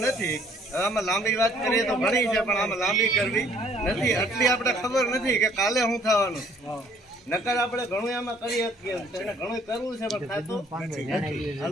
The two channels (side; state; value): both; normal; correlation 0.60